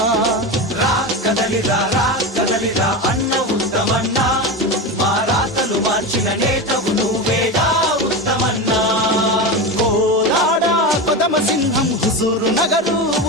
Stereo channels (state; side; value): normal; both; correlation 0.21